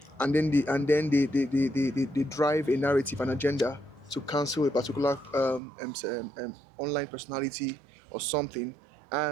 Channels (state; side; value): drops out; left; at 5.6 s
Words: and then they drive a narrative, an agenda to cancel a particular online personality or something.